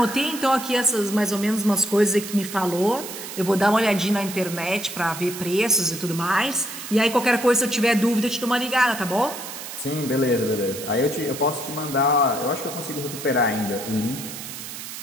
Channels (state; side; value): noise; right; hiss, 10 dB below the sound